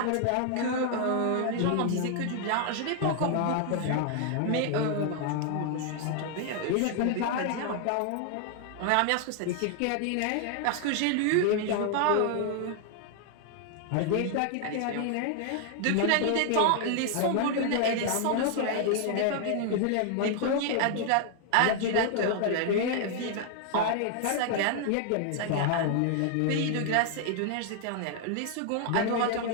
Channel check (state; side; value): different; both; correlation 0.00